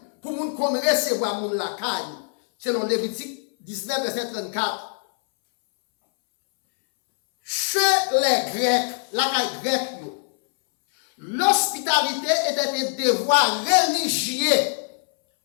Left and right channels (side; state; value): right; silent; 63 dB below the other